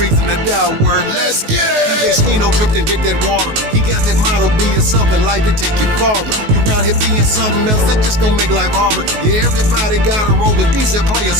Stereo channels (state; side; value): late; left; 19 ms